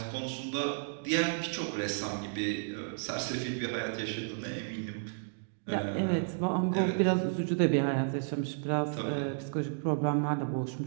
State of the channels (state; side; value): silent; left; digital silence